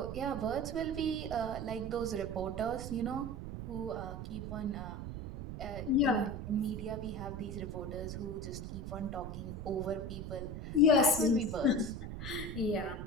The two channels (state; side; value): noise; right; rumble, 7 dB below the sound